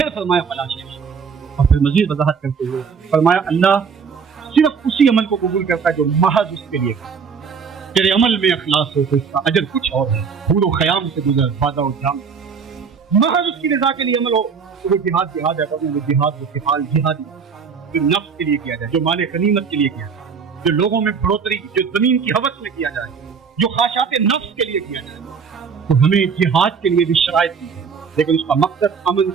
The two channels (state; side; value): quieter; left; 6.0 dB